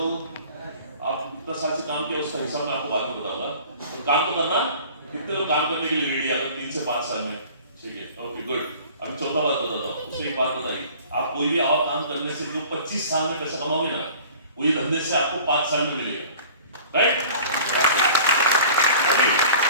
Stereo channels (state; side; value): inverted; both; correlation -0.45